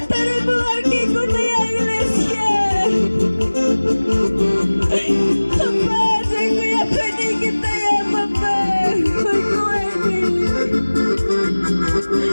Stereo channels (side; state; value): both; inverted; correlation -1.00